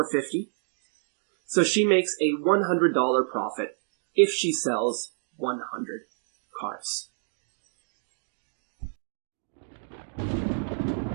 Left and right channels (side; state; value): left; silent; 59 dB below the other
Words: So she makes a $100 profit if she sells 100 cars.